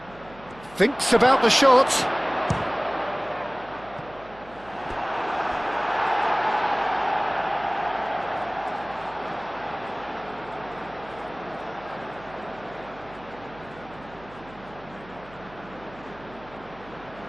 Thinks about the shot.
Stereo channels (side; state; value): right; noise; hum, 21 dB below the sound